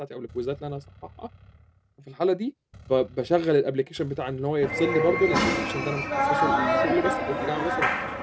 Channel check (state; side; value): identical; both; correlation 1.00